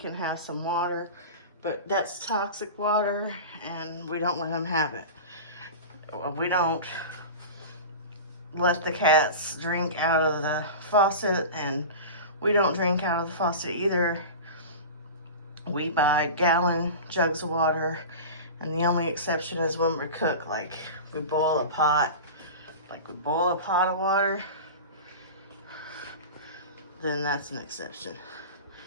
have some water, but that's toxic water and we don't let him have it. We don't let the cats drink out of the faucet, and we don't drink out of the faucet either. We buy gallon jugs of water, and the only exception is when we cook, like we boil a pot, of water, then that's an exception.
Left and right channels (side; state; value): both; inverted; correlation -0.30